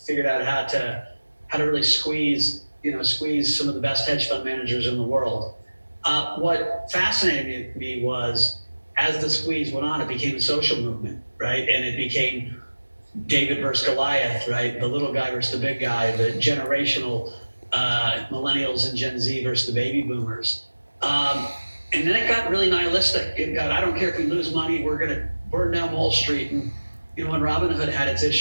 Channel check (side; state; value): both; inverted; correlation -1.00